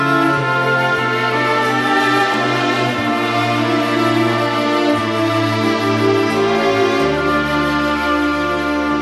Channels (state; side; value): identical; both; correlation 1.00